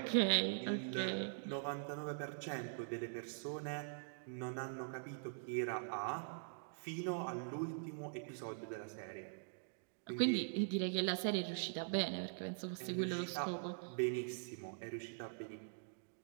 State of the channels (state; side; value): silent; left; digital silence